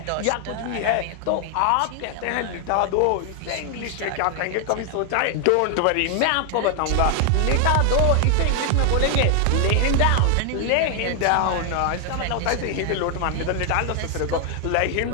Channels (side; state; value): both; different; correlation 0.00